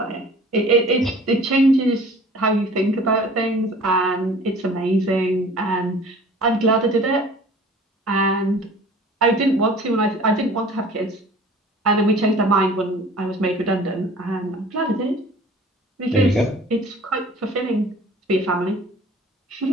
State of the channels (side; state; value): both; normal; correlation 0.47